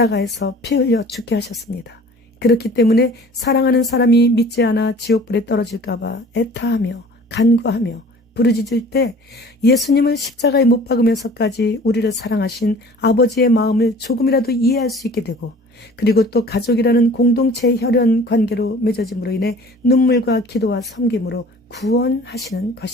피 흘려 죽게 하셨습니다. 그렇기 때문에 사랑하는 사람이 믿지 않아 지옥불에 떨어질까 봐 애타하며 간구하며 부르짖을 때 예수님을 십자가에 못 박으면서까지 우리를 사랑하신 아버지의 마음을 조금이라도 이해할 수 있게 되고 그리고 또 가족이라는 공동체의 혈연 관계로 맺어짐으로 인해 눈물과 기도와 섬김으로 구원하시는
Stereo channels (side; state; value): both; normal; correlation 0.46